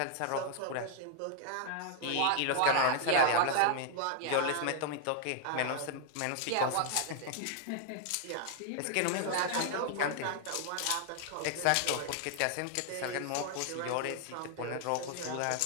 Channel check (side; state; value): both; different; correlation 0.00